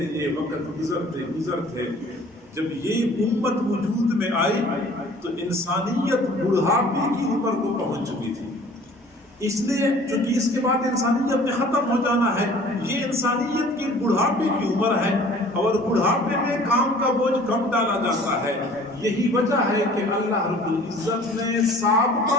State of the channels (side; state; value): both; normal; correlation 0.50